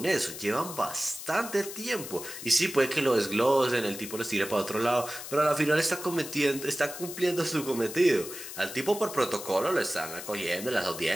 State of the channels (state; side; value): noise; left; hiss, 10 dB below the sound